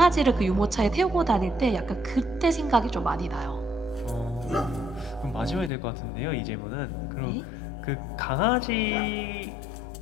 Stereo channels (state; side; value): drops out; right; at 5.7 s